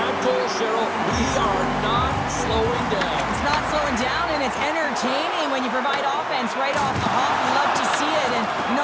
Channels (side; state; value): both; identical; correlation 1.00